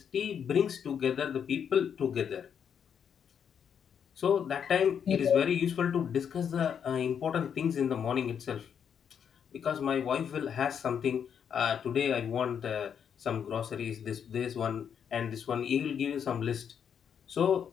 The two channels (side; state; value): right; quieter; 7.8 dB